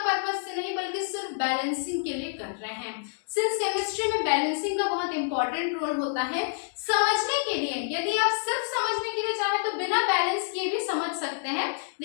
पर्पस से नहीं बल्कि सिर्फ बैलेंसिंग के लिए कर रहे हैं। सिंस केमिस्ट्री में बैलेंसिंग का बहुत इंपॉर्टेंट रोल होता है समझने के लिए, यदि आप सिर्फ समझने के लिए चाहें तो बिना बैलेंस किए भी समझ सकते हैं,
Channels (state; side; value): silent; right; digital silence